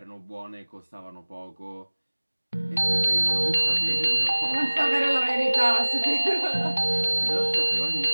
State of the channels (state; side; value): inverted; both; correlation -1.00